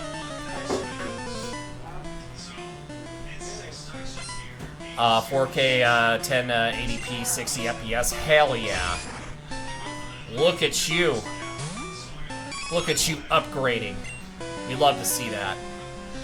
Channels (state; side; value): identical; both; correlation 1.00